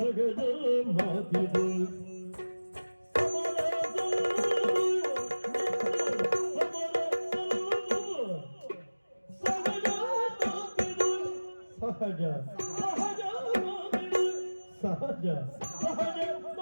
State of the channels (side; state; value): both; inverted; correlation -1.00